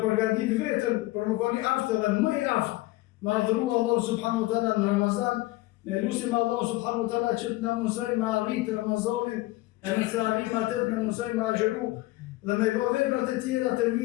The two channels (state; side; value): quieter; right; 19.2 dB